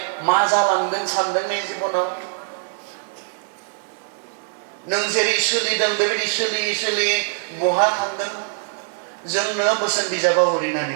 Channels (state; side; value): silent; left; digital silence